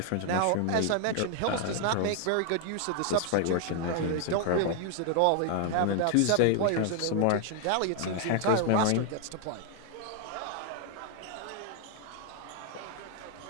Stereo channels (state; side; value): different; both; correlation 0.00